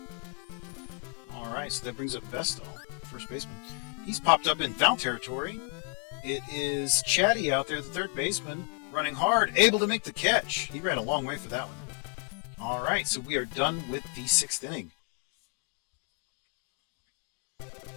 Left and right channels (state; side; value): quieter; right; 39.2 dB